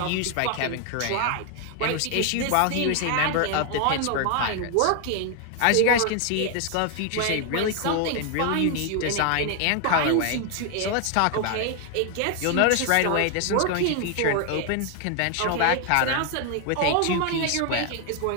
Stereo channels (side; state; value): both; different; correlation 0.00